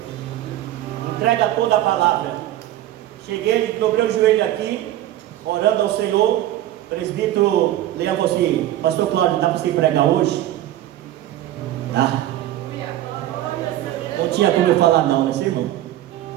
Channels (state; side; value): quieter; left; 13.6 dB